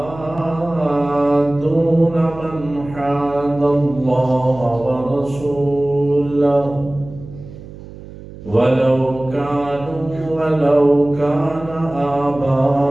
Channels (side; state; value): right; noise; hum, 16 dB below the sound